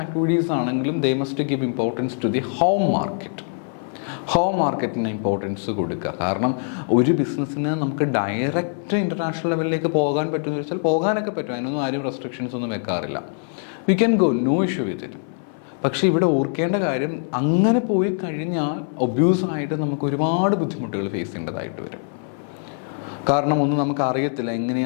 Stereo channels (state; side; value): silent; right; 59 dB below the other